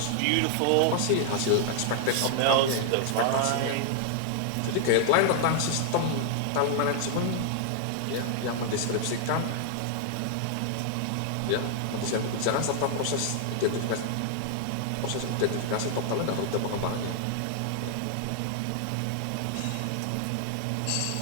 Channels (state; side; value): different; both; correlation -0.01